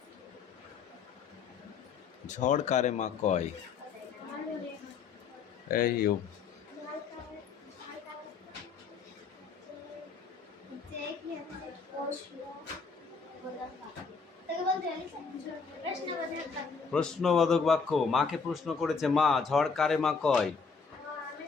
ঝড় কারে মা কয়? এই ও, প্রশ্নবোধক বাক্য। মাকে প্রশ্ন করেছে, মা ঝড় কারে মা কয়?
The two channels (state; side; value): quieter; right; 5.3 dB